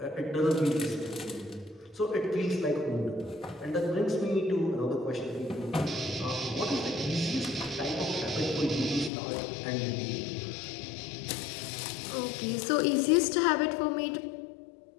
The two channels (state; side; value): drops out; right; at 9.1 s